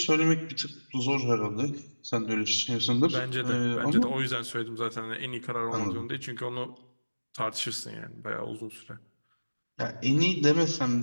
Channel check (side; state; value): both; inverted; correlation -1.00